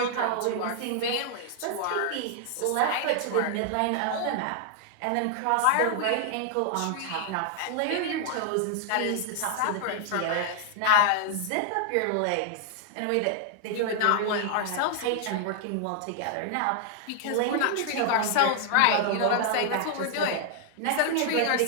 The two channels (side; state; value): both; different; correlation 0.00